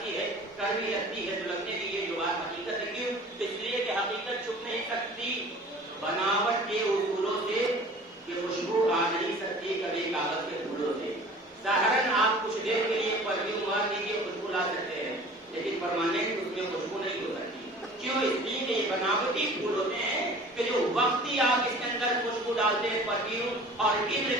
ہے، کڑوی لگتی ہے، تو لگنے دیجیے جو بات حقیقت ہے. کیوں؟ اس لیے کہ حقیقت چھپ نہیں سکتی بناوٹ کے اصولوں سے، کہ خوشبو آ نہیں سکتی کبھی کاغذ کے پھولوں سے. ظاہراً آپ کچھ دیر کے لیے پرفیوم مار دیجیے، خوشبو لا سکتے ہیں، لیکن پرماننٹ اس میں خوشبو نہیں ہو سکتی. کیوں؟ اس لیے کہ یہ بناوٹی پھول ہوتے ہیں کہ جو وقتی آپ اس کے اندر خوشبو ڈالتے ہیں پرفیوم اور عطر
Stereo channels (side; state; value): both; normal; correlation 0.45